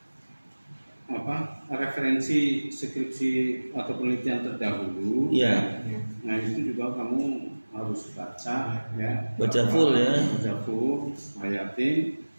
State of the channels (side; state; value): both; inverted; correlation -1.00